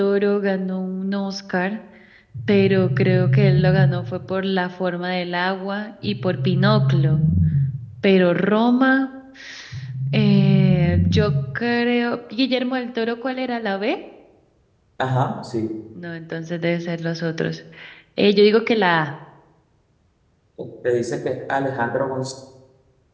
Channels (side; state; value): both; identical; correlation 1.00